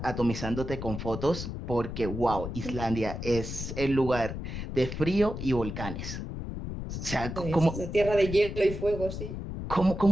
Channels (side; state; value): left; noise; rumble, 6 dB below the sound